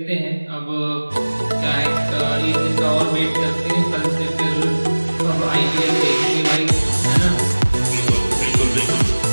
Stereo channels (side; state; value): both; inverted; correlation -1.00